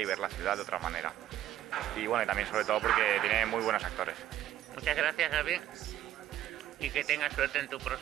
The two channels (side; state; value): left; quieter; 12.6 dB